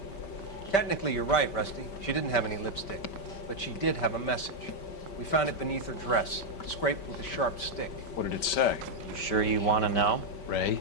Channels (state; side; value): late; right; 5.2 ms